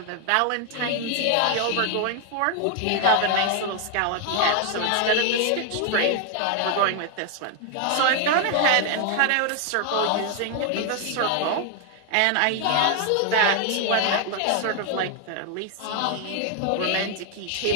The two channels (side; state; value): both; different; correlation 0.00